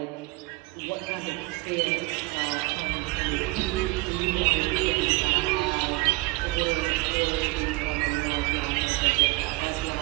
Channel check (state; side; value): quieter; left; 22.7 dB